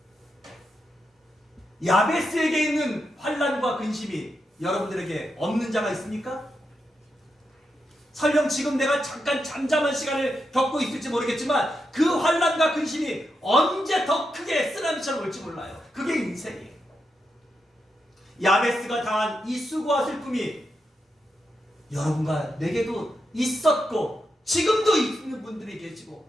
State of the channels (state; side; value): normal; both; correlation 0.85